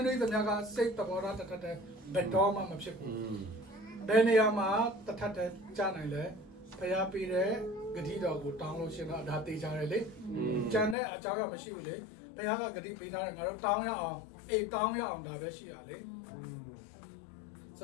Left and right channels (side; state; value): right; drops out; at 11.0 s